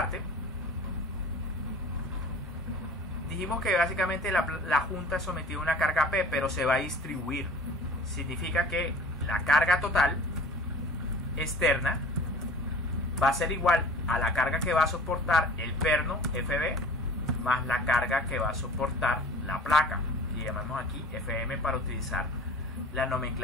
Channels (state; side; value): normal; both; correlation 0.44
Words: dijimos que básicamente la junta es sometida a una carga P, pero se va a distribuir. Significa que la carga total externa va a ser igual a la carga que va a soportar el perno FB más la carga que va a soportar la placa, que llamamos aquí FM para utilizar la